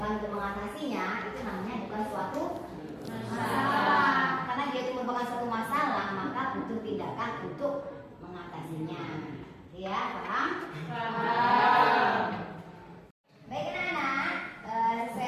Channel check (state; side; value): identical; both; correlation 1.00